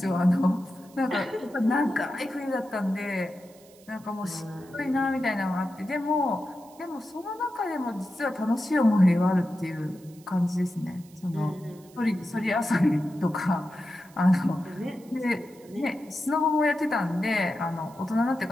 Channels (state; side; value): noise; right; hiss, 26 dB below the sound